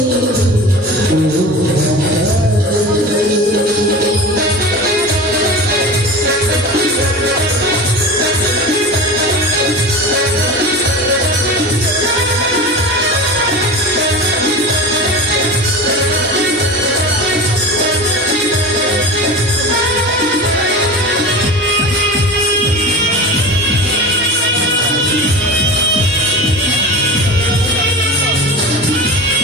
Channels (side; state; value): both; normal; correlation 0.31